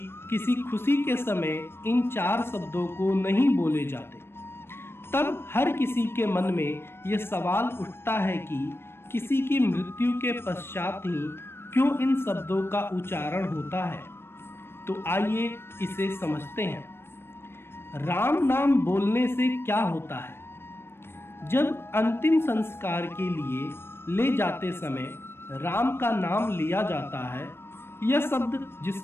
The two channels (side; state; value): right; late; 0.12 ms